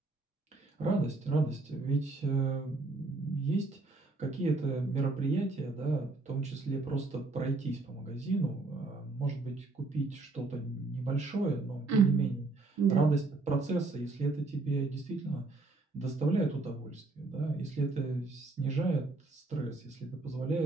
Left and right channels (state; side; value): quieter; left; 3.3 dB